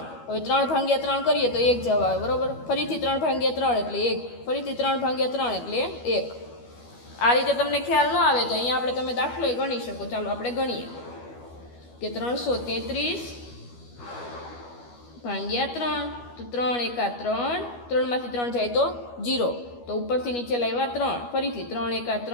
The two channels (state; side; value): late; right; 12 ms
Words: હવે 3 ભાગ્યા 3 કરીએ તો 1 જવાબ આવે. બરાબર. ફરીથી 3 ભાગ્યા 3 એટલે 1, ફરીથી 3 ભાગ્યા 3 એટલે 1. આ રીતે તમને ખ્યાલ ન આવે તો અહીંયા આપણે તમે દાખલો ગણી શકો. ચાલો આપણે ગણીએ કે 333 ભાગ્યા 3, તો 3 એકા 3, 3 માંથી 3 જાય તો 0, તો ઉપરથી નીચે લાવ્યા 3, ફરીથી 3 એકા